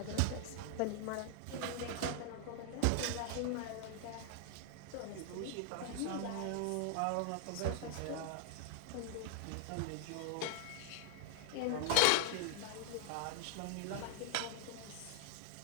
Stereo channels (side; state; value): both; different; correlation 0.00